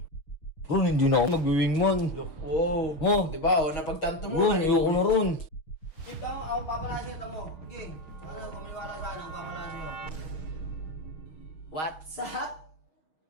Ron, hindi na ako mag-wingman. Wow. Oh. Diba, oh, napagtanto mo. Ron, ayoko na ron. Keep tamo, ako papalasin ito mo. Okay. Ano, kumaliwala sa ano, papalasin mo. What's up?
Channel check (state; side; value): late; right; 6.4 ms